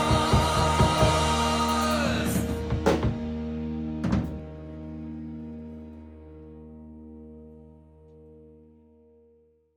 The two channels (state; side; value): identical; both; correlation 1.00